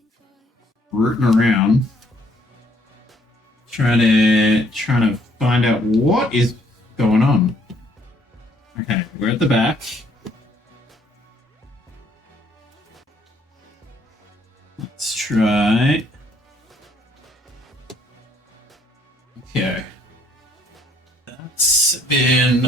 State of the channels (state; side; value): normal; both; correlation 0.65